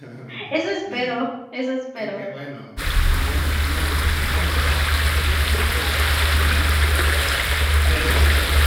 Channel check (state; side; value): identical; both; correlation 1.00